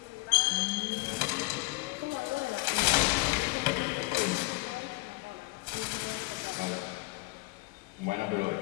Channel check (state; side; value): quieter; right; 24.6 dB